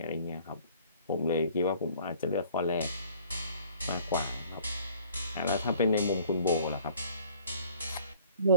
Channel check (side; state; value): both; inverted; correlation -0.53